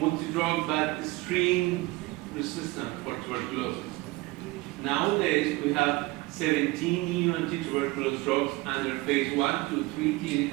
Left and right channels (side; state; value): left; quieter; 21.4 dB